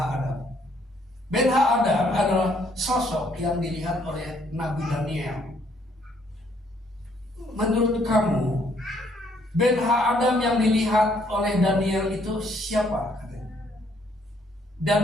Ben ha-Adam adalah sosok yang dilihat oleh Nabi Daniel. Menurut kamu, Ben ha-Adam yang dilihat oleh Daniel itu siapa?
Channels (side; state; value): both; normal; correlation 0.67